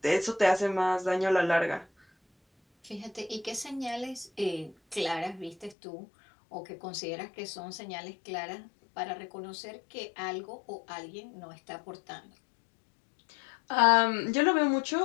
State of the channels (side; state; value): right; drops out; at 5.8 s